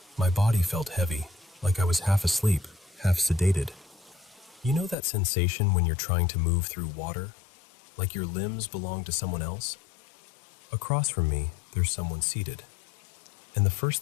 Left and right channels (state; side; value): drops out; right; at 5.0 s